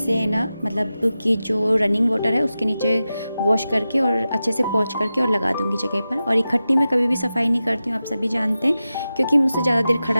ना, मतलब कि जो रनिंग वाटर है उसके नीचे वॉश करके और अच्छे से पोंछ करके और लगा दूँगी जगह पर। और इकट्ठी मैं कभी भी सफाई नहीं करती हूँ, आप सभी जानते हैं, क्योंकि मुझसे ज़्यादा देर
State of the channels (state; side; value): inverted; both; correlation -0.93